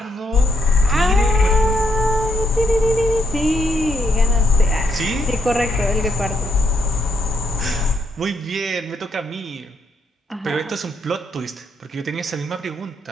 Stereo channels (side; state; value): both; normal; correlation 0.76